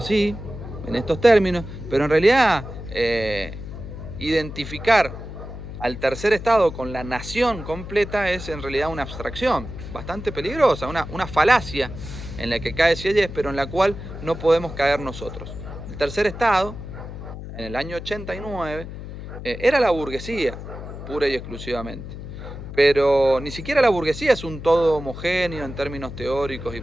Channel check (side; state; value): left; noise; hum, 10 dB below the sound